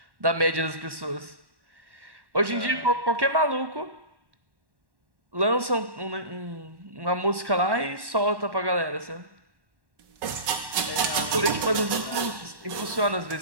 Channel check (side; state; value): left; late; 1.1 ms